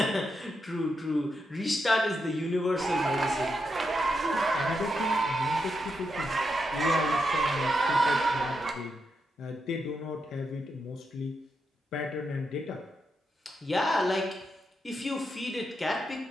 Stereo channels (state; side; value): normal; both; correlation 0.84